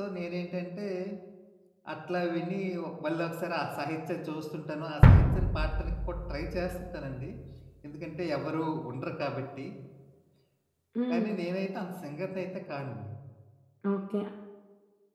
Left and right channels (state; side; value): identical; both; correlation 1.00